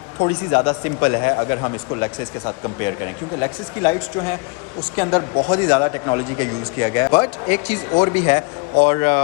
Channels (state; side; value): quieter; right; 31.2 dB